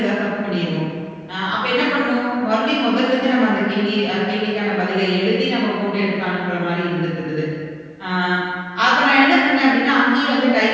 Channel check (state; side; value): identical; both; correlation 1.00